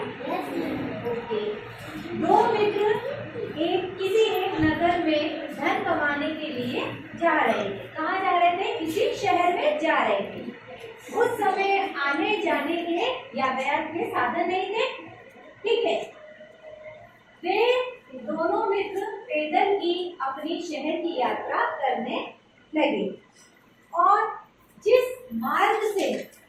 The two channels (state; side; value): identical; both; correlation 1.00